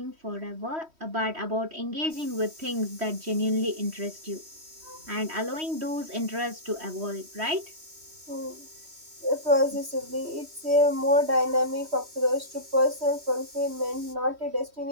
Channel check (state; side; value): late; left; 3.1 ms